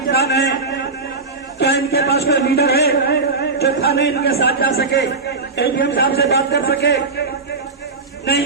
हैं। क्या इनके पास कोई लीडर है जो थाने इनके साथ जा सके, एडीएम साहब से बात कर सके? नहीं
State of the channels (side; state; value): left; quieter; 3.9 dB